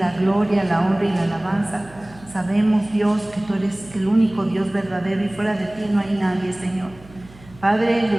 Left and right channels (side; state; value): right; noise; hum, 22 dB below the sound